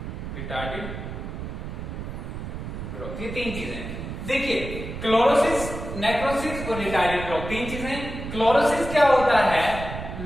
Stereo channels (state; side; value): noise; right; rumble, 8 dB below the sound